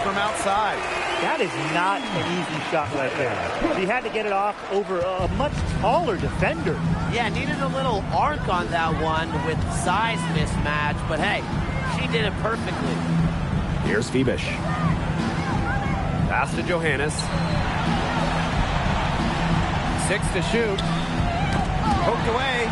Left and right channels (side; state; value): both; identical; correlation 1.00